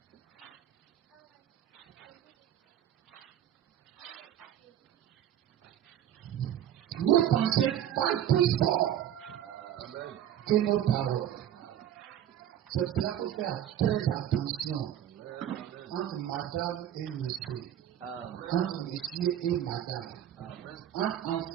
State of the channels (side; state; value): left; quieter; 10.8 dB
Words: Nos pensées parlent plus fort que nos paroles. C'est pour cela qu'il faut faire très attention entre madame et monsieur, entre monsieur et madame, entre